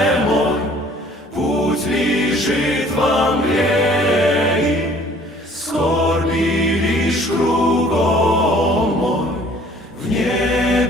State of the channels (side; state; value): both; normal; correlation 0.54